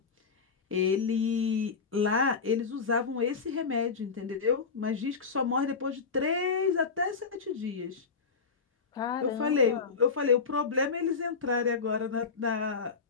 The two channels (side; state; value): right; quieter; 5.2 dB